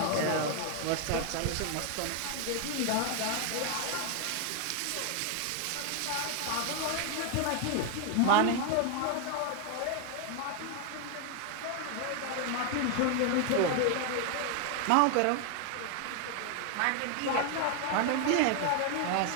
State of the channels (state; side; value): different; both; correlation 0.01